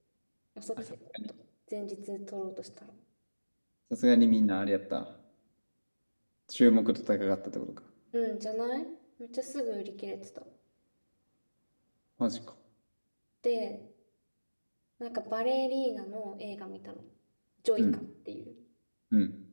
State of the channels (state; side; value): inverted; both; correlation -1.00